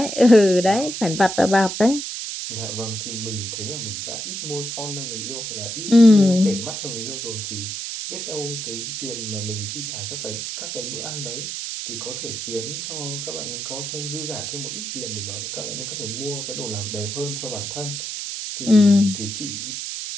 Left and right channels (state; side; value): noise; right; hiss, 5 dB below the sound